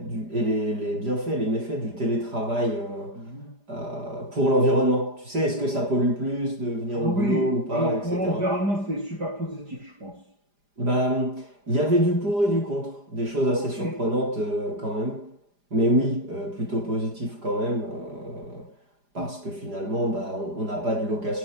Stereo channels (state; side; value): late; left; 4.9 ms